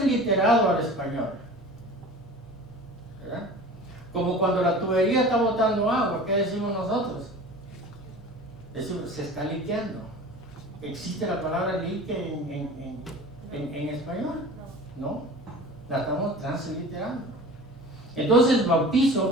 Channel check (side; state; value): both; normal; correlation 0.39